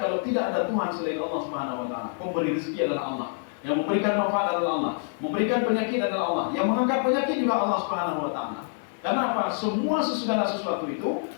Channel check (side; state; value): right; silent; 60 dB below the other